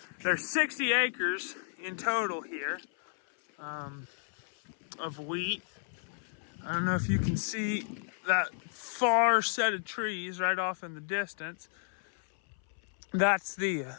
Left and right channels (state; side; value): silent; right; 56 dB below the other